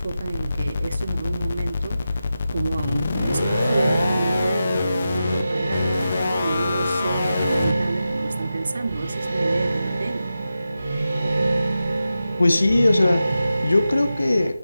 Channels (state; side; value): inverted; both; correlation -0.91